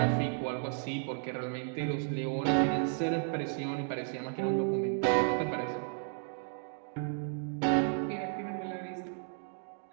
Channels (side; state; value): left; silent; 55 dB below the other